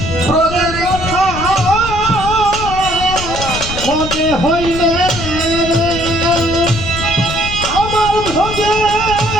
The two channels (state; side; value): noise; left; rumble, 7 dB below the sound